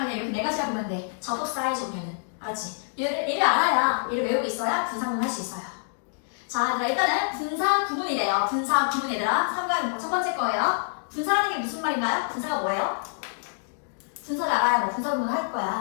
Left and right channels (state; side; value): silent; right; digital silence